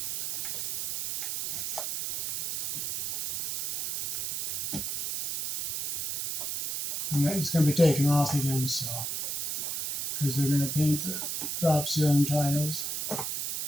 And it's going to be taken off again, so because they're going to paint the drop ceiling tiles.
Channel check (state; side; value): noise; right; hiss, 2 dB below the sound